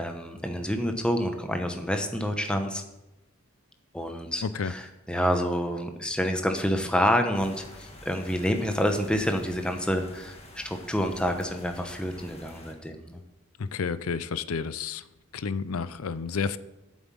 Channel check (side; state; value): both; normal; correlation 0.71